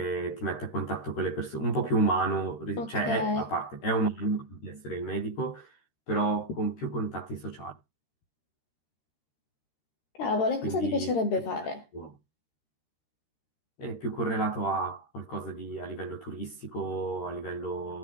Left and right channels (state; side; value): late; right; 13 ms